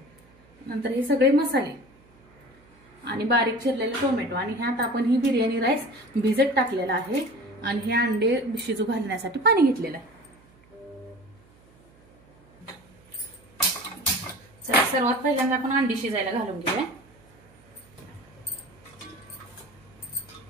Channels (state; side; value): noise; right; hum, 29 dB below the sound